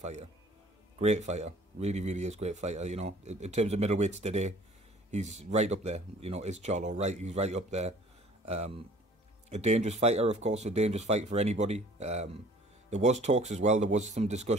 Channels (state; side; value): normal; both; correlation 0.51